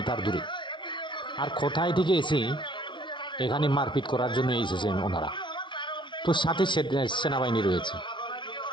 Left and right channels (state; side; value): late; right; 0.24 ms